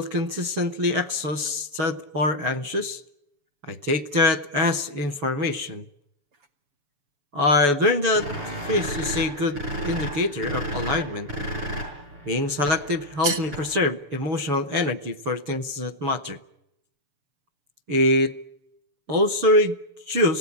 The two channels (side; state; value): left; late; 7.0 ms